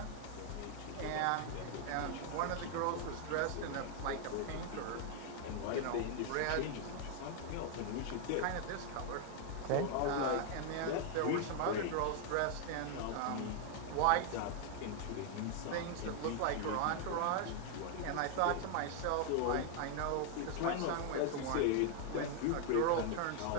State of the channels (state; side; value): different; both; correlation 0.00